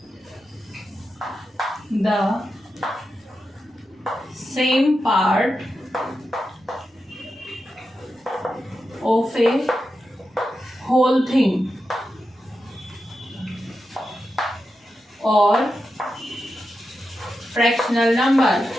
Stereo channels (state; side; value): normal; both; correlation 0.89